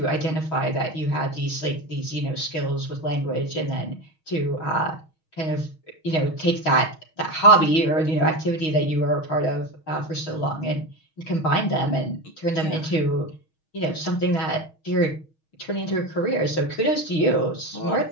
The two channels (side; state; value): right; late; 6.3 ms